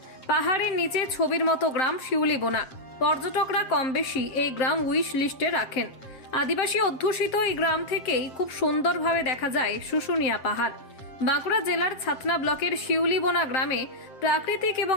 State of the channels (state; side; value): late; right; 7.5 ms